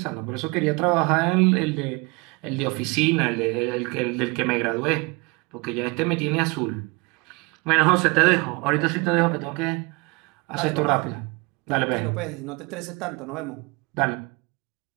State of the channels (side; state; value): left; quieter; 27.6 dB